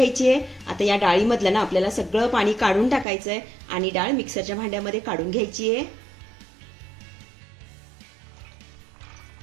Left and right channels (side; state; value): left; drops out; at 3.1 s